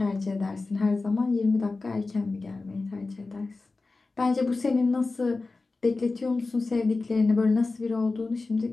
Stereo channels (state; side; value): quieter; right; 3.6 dB